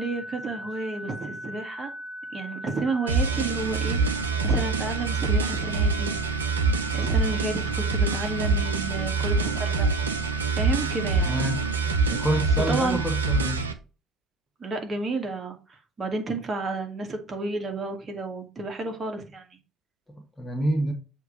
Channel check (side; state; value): left; quieter; 3.1 dB